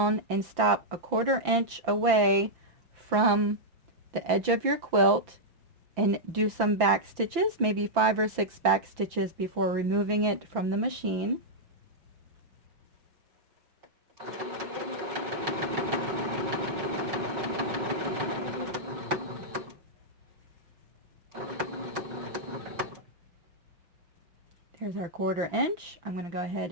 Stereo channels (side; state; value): left; late; 5.9 ms